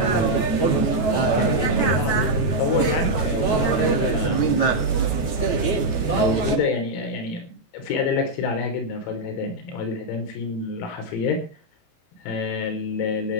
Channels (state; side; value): late; right; 18 ms